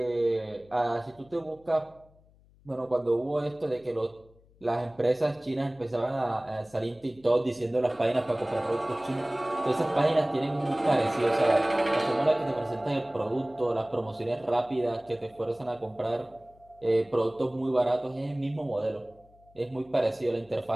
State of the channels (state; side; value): noise; left; hum, 29 dB below the sound